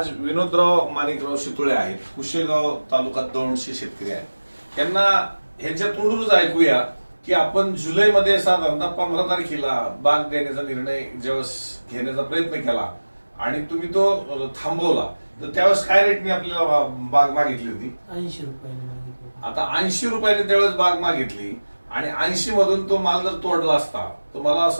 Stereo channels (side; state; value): both; inverted; correlation -1.00